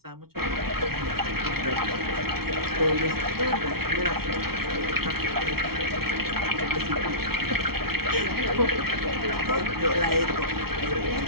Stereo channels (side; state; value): left; late; 0.94 ms